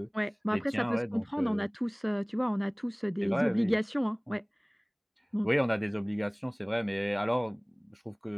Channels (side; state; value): both; identical; correlation 1.00